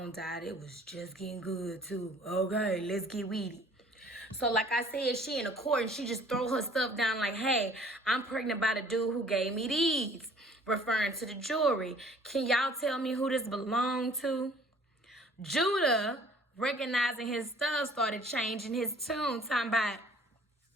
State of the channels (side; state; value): both; normal; correlation 0.54